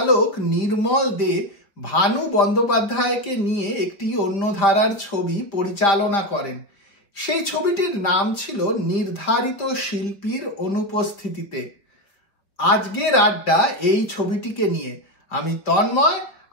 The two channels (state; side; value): late; right; 4.8 ms